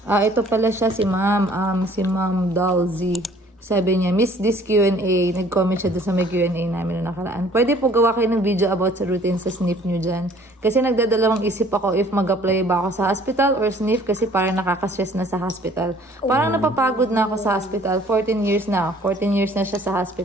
Ito pala siya si ma'am. Si ma'am Dalzy. Sabi niya, miss this Q&A. Nag-comment siya doon sa may Q&A namin na nakaraan. Pwede po gawa kayo ng video about sa routine sa SNF nyo dyan. Kasi nagdadalawang isip ako if mag-apply ba ako sa hospital or SNF kasi parang nakaka-stress na sa hospital. Parang napapagod na ako sa hospital. 14 years na. 14 years na siya sa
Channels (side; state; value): both; normal; correlation 0.55